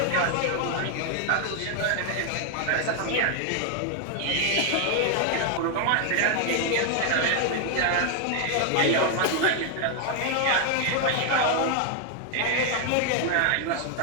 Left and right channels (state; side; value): different; both; correlation 0.00